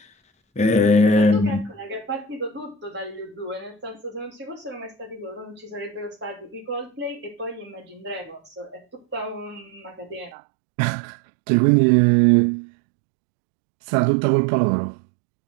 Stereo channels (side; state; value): left; drops out; at 10.3 s